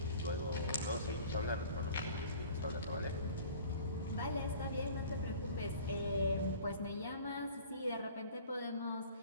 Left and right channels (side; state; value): both; inverted; correlation -0.46